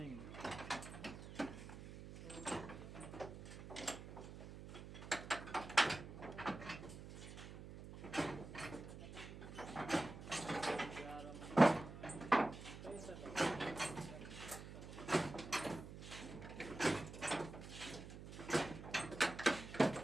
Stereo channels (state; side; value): noise; right; hum, 12 dB below the sound